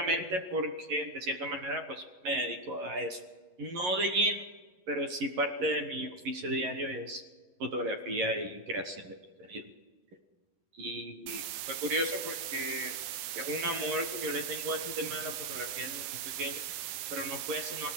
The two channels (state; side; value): late; left; 11 ms